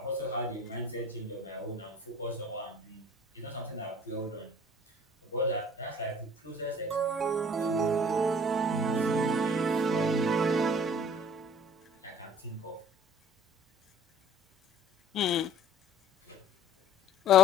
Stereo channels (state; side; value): normal; both; correlation 0.50